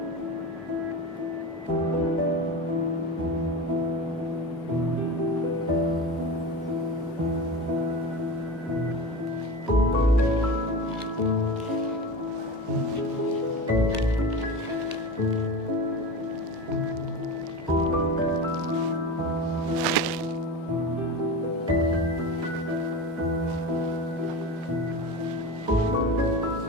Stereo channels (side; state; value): both; normal; correlation 0.27